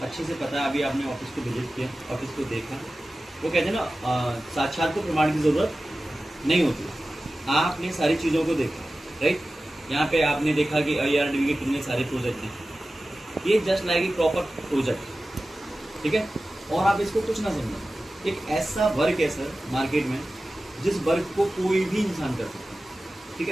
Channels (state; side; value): normal; both; correlation 0.95